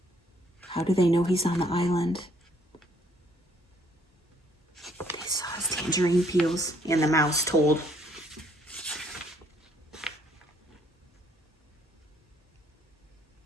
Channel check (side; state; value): both; normal; correlation 0.65